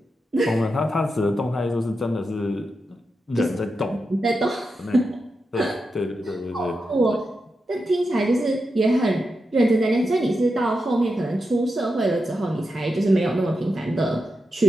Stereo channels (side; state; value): both; normal; correlation 0.88